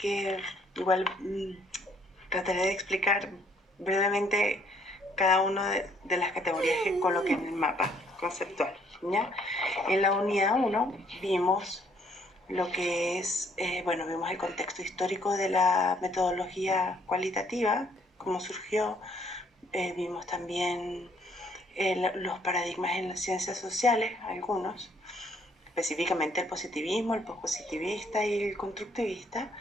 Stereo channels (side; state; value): both; normal; correlation 0.65